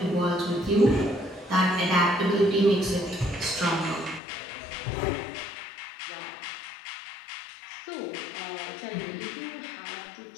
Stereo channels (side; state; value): right; drops out; at 4.2 s